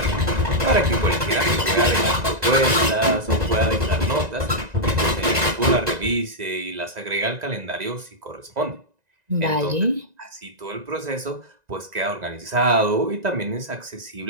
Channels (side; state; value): left; late; 1.9 ms